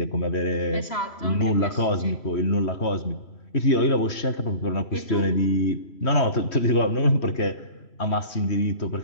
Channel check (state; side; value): late; right; 3.1 ms